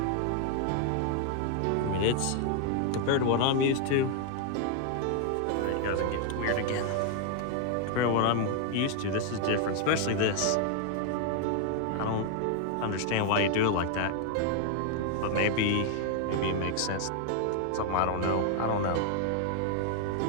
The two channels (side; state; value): both; different; correlation 0.00